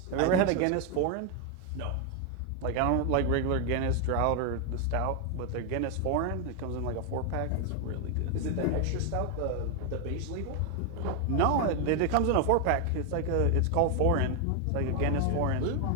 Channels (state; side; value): different; both; correlation 0.01